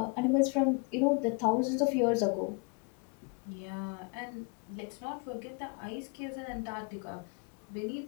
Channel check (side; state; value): right; quieter; 30.8 dB